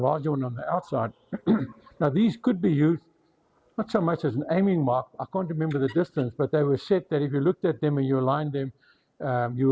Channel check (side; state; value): both; identical; correlation 1.00